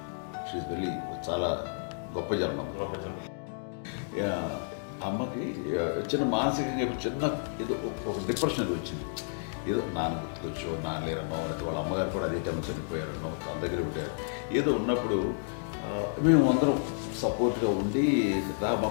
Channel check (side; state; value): right; silent; digital silence